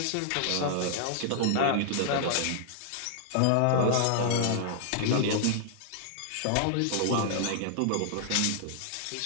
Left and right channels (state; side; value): different; both; correlation -0.01